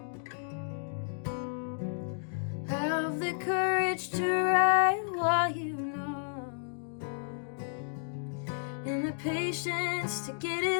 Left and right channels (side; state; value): right; silent; digital silence